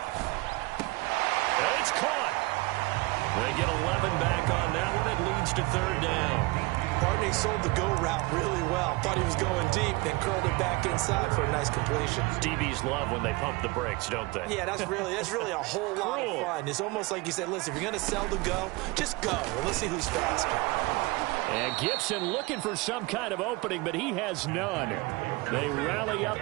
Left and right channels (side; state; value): left; quieter; 23.5 dB